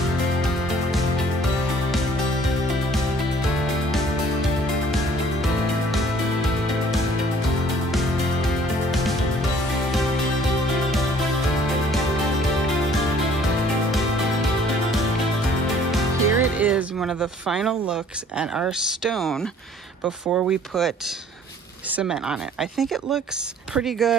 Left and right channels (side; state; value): both; normal; correlation 0.56